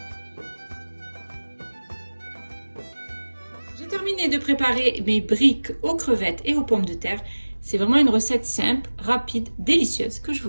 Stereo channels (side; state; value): both; inverted; correlation -1.00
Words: J'ai terminé de préparer mes briques aux crevettes et aux pommes de terre. C'est vraiment une recette simple, rapide, délicieuse que je vous